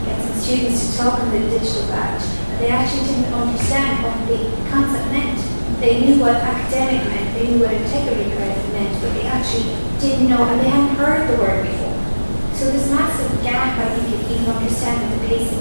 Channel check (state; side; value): inverted; both; correlation -1.00